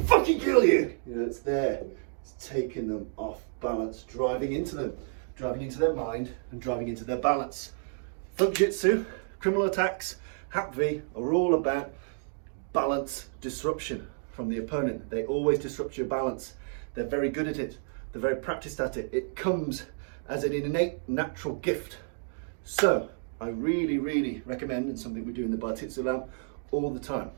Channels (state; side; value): silent; left; digital silence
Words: kill you! You know, it's there. It's taking them off balance, driving into their mind and driving into their balance. Thugjitsu, criminal attacks, HAPV are all about balance disruption from the opponent. They always disrupt your balance. They're very good at it. They're very practiced at it. It comes as an innate natural gift. So I really, really recommend, and something we do in the Bartitsu lab all the time,